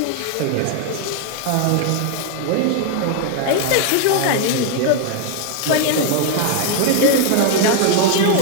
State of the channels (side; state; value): both; different; correlation 0.00